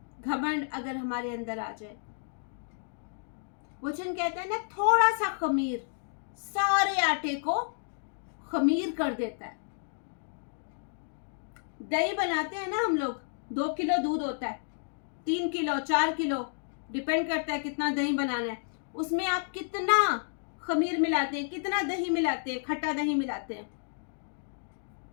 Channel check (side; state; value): right; silent; digital silence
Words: घमंड अगर हमारे अंदर आ जाए, वचन कहता है ना, थोड़ा सा खमीर सारे आटे को खमीर कर देता है। दही बनाते हैं ना हम लोग, 2 किलो दूध होता है, 3 किलो 4 किलो डिपेंड करता है कितना दही बनाना है। उसमें आप कितना खमीर मिलाते हैं, कितना दही मिलाते हैं, खट्टा दही मिलाते हैं?